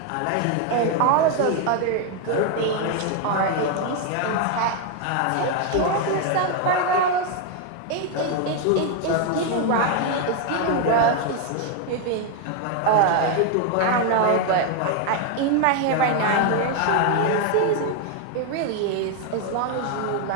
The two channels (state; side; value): different; both; correlation 0.01